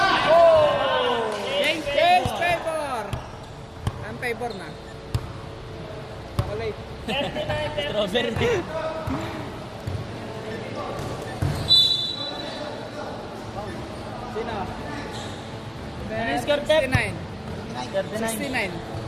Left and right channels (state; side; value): identical; both; correlation 1.00